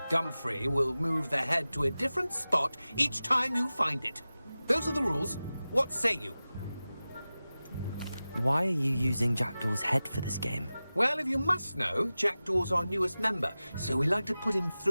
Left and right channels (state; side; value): inverted; both; correlation -0.96